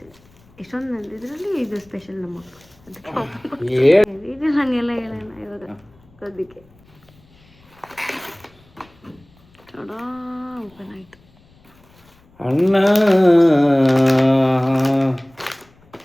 ಎಷ್ಟೊಂದು ಇದರಲ್ಲಿ ಇದು ಸ್ಪೆಷಲ್ ನಮ್ಮ ಇದು ಹಂಗೆಲ್ಲ ಹೇಳೋಣ ಇವಾಗ ಅದಕ್ಕೆ ಓಪನ್ ಆಯ್ತು. ಅಣ್ಣ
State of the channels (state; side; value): noise; left; rumble, 30 dB below the sound